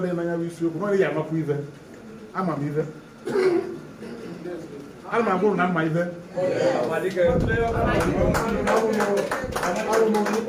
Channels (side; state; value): both; identical; correlation 1.00